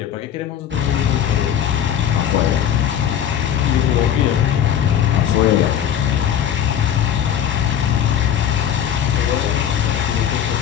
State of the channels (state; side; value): quieter; right; 9.6 dB